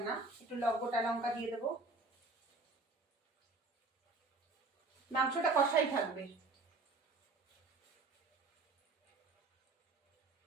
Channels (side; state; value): left; quieter; 3.5 dB